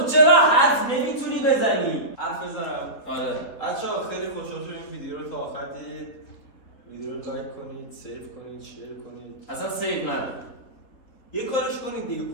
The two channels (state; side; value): late; right; 3.8 ms